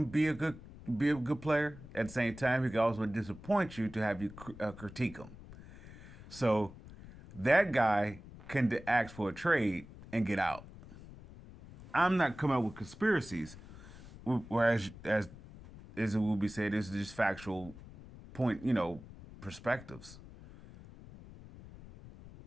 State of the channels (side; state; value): left; noise; rumble, 17 dB below the sound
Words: be a good player. At the same time, he can also disappoint you to have you critique him. So that guy can ask for a trade and get out. I'm not coming up with conspiracies, whereas as it will be said, this is just factual point, perspectives.